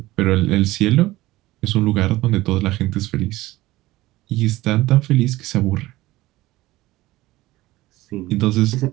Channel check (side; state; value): left; quieter; 17.9 dB